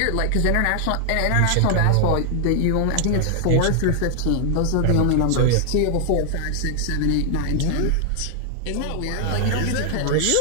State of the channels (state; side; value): different; both; correlation 0.00